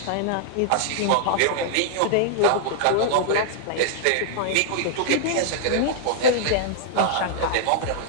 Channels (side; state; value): both; different; correlation -0.01